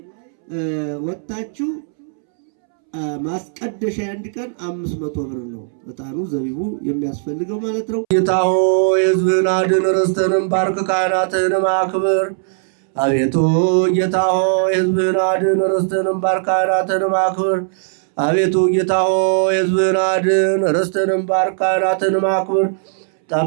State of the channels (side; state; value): left; silent; 67 dB below the other